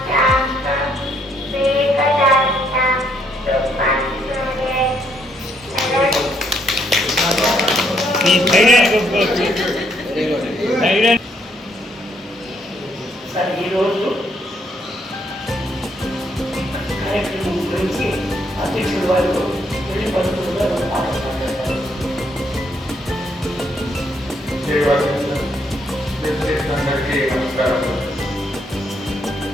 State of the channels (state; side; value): normal; both; correlation 0.72